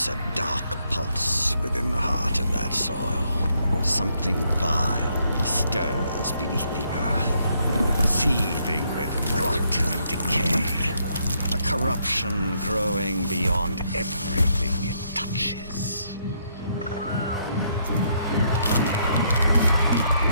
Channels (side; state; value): both; inverted; correlation -0.74